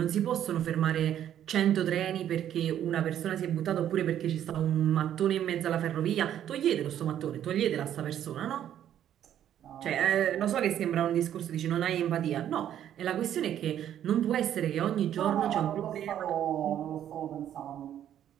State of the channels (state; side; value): quieter; left; 10.7 dB